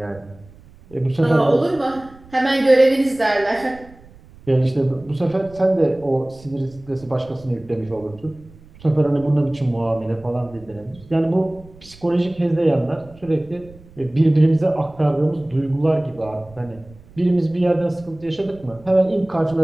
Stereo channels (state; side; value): noise; right; rumble, 23 dB below the sound